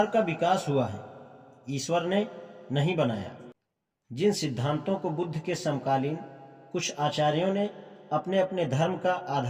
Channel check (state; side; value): identical; both; correlation 1.00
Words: का विकास हुआ है, ईश्वर ने नहीं बनाया। जिन सिद्धांतों को बुद्ध के समकालीन कुछ आचार्यों ने अपने अपने धर्म का